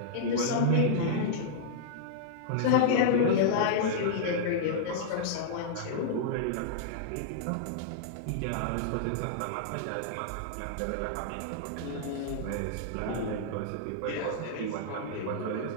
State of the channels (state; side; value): different; both; correlation -0.02